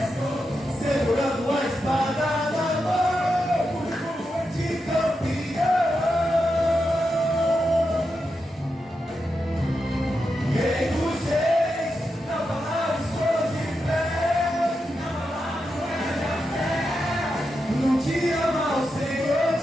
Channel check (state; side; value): normal; both; correlation 0.87